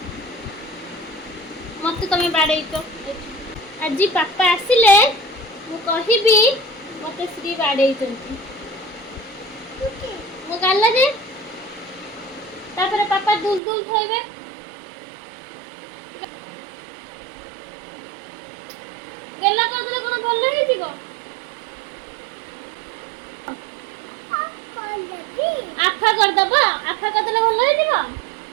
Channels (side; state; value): left; drops out; at 13.6 s